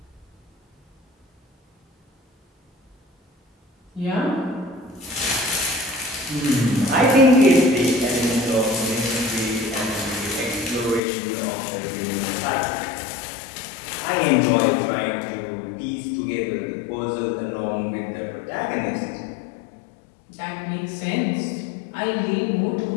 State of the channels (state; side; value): drops out; right; at 11.0 s